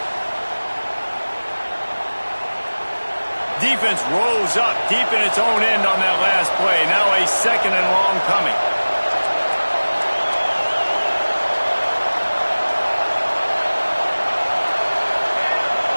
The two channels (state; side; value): inverted; both; correlation -1.00